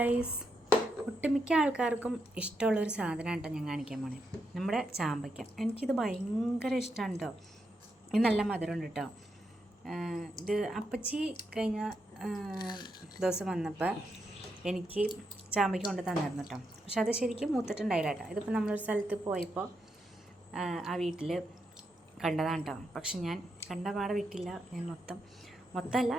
ഒട്ടുമിക്ക ആൾക്കാർക്കും ഇഷ്ടമുള്ളൊരു സാധനമാണ് കേട്ടോ ഞാൻ കാണിക്കാൻ പോണേ. നമ്മുടെ ചാമ്പയ്ക്ക. എനിക്കിത് ഭയങ്കര ഇഷ്ടമാണ് കേട്ടോ. ഇത് നല്ല മധുരമുണ്ട് കേട്ടോ. ഇത് അപ്പച്ചി കഴിഞ്ഞ ദിവസം വന്നപ്പോൾ എനിക്ക് ചാമ്പയ്ക്ക കൊണ്ട് തന്നിരുന്നു കേട്ടോ. പക്ഷെ അത് ശരിക്കും മൂത്തിട്ടുണ്ടായില്ല കേട്ടോ. ഇതിപ്പോൾ നമ്മളൊരു സ്ഥലത്ത് പോയപ്പോൾ ആ വീട്ടിൽ കണ്ടതാണ് കേട്ടോ. പക്ഷെ ഞാൻ കണ്ട പാടെ വിട്ടില്ല. ഞാൻ മൊത്തമല്ല,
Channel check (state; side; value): normal; both; correlation 0.82